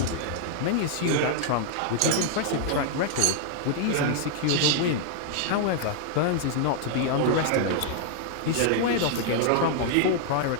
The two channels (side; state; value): both; different; correlation -0.01